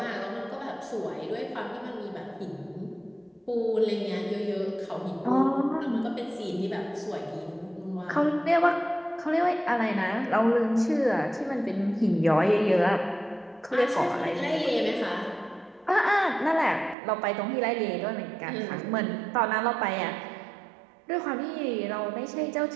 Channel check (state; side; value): drops out; left; at 16.9 s